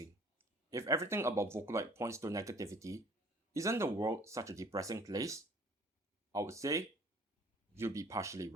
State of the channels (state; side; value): normal; both; correlation 0.53